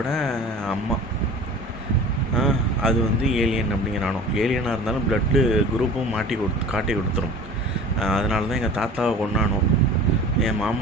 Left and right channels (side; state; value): both; normal; correlation 0.41